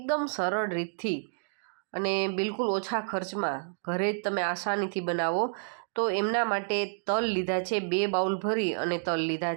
સરળ રીતથી અને બિલકુલ ઓછા ખર્ચમાં ઘરે જ તમે આસાનીથી બનાવો. તો એમના માટે તલ લીધા છે, 2 બાઉલ ભરી અને તલ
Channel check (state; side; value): silent; left; digital silence